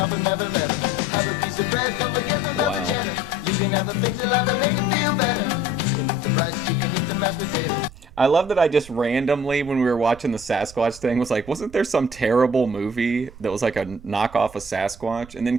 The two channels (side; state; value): right; noise; rumble, 18 dB below the sound